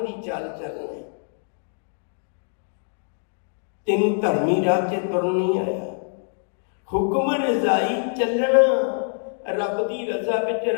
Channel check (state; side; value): silent; right; 59 dB below the other